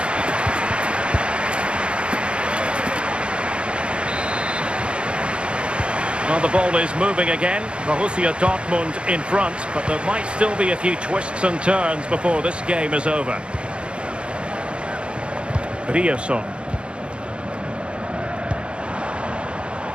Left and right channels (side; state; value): left; late; 0.056 ms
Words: Well, the ball is moving again. Borussia Dortmund in front, but there might still be a few twists and turns before this game is over. Riosson.